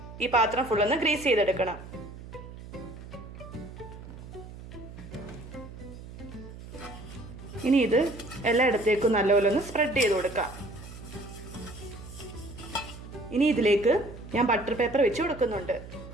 ഈ പാത്രം ഫുള്ളൊന്ന് ഗ്രീസ് ചെയ്തെടുക്കണം. ഇനി ഇത് എല്ലായിടത്തേക്കും നല്ലപോലെ ഒന്ന് സ്പ്രെഡ് ചെയ്ത് കൊടുക്കാം. ഇനി ഇതിലേക്ക് ഞാൻ ബട്ടർ പേപ്പർ വെച്ച് കൊടുക്കുന്നുണ്ട്.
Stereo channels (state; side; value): noise; right; hum, 14 dB below the sound